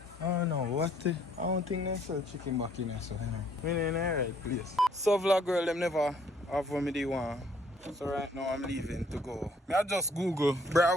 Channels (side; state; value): both; normal; correlation 0.63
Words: I don't know what the, I don't think they sell chicken back in there, so you know. We in the right place. So vlog girl, them never have what me they want. So right now I'm leaving to go. I just Google